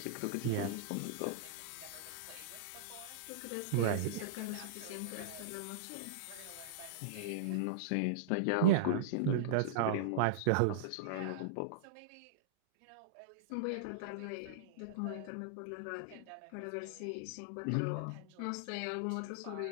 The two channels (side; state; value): both; different; correlation -0.02